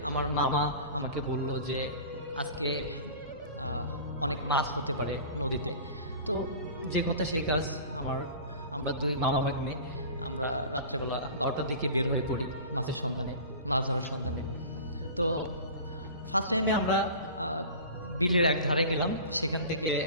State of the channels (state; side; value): inverted; both; correlation -0.38